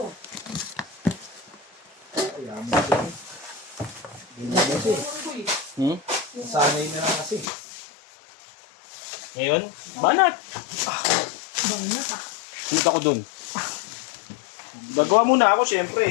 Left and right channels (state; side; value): drops out; right; at 7.5 s